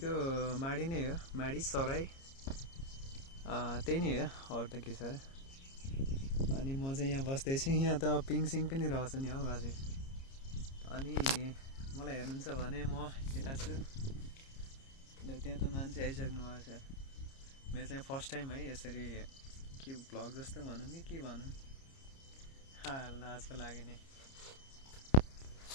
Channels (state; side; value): late; right; 30 ms